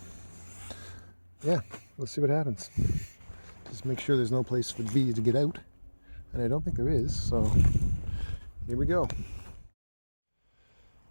let's see what happens. Just make sure there's no place for the bees to get out. And I don't think there is, so here we go.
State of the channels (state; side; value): inverted; both; correlation -1.00